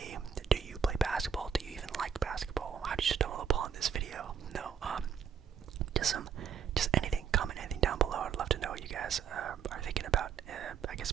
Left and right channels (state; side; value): quieter; left; 7.5 dB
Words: Do you play basketball? Do you even like basketball? How did you stumble upon this video? No, just anything, comment anything down below. I'd love to know what you guys are thinking about, I guess,